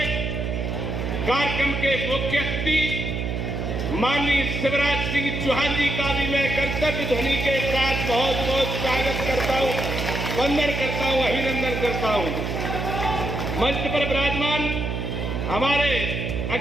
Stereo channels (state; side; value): noise; right; hum, 3 dB below the sound